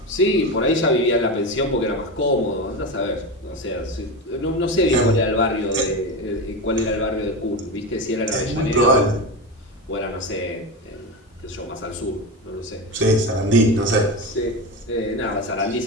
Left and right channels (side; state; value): both; normal; correlation 0.20